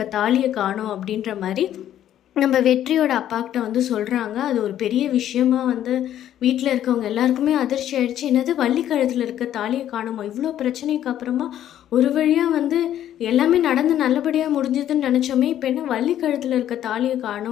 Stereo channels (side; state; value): right; quieter; 11.4 dB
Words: தாலியை காணோம் அப்படின்ற மாதிரி நம்ம வெற்றியோட அப்பாக்கிட்ட சொல்கிறாங்க. அது ஒரு பெரிய விஷயமா வீட்டில் இருக்கவங்க எல்லாருக்குமே அதிர்ச்சி ஆகிடுச்சு. என்னது வள்ளி கழுத்தில் இருக்க தாலியை காணுமா, இவ்வளோ பிரச்சனைக்கு அப்புறமா ஒரு வழியாக எல்லாமே நடந்து நல்லபடியாக முடிஞ்சதுன்னு நினச்சோமே, இப்போ என்ன வள்ளி கழுத்தில் இருக்க தாலியை